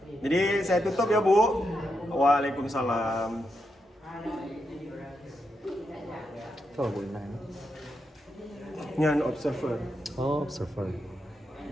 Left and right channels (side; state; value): both; normal; correlation 0.84